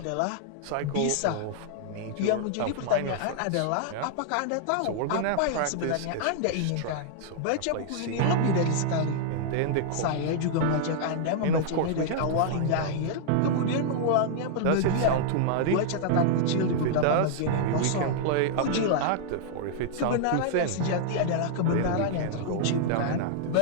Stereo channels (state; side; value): different; both; correlation -0.01